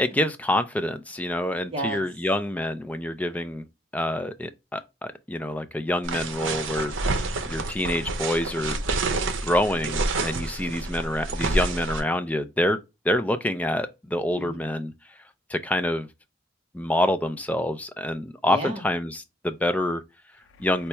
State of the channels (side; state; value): both; normal; correlation 0.68